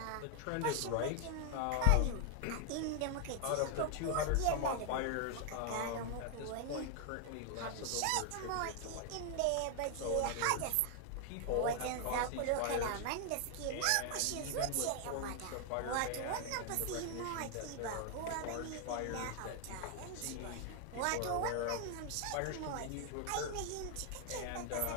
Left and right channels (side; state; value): both; different; correlation 0.00